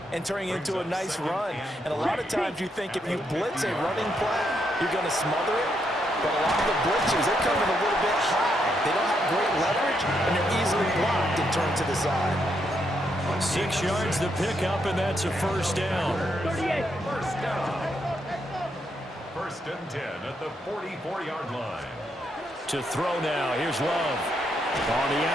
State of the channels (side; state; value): both; normal; correlation 0.78